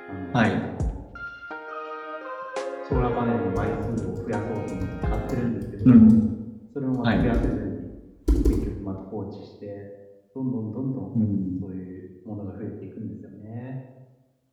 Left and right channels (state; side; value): identical; both; correlation 1.00